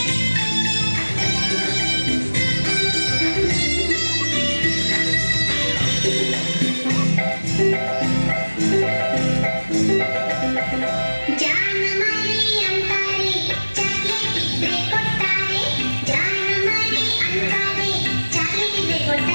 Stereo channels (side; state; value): both; inverted; correlation -1.00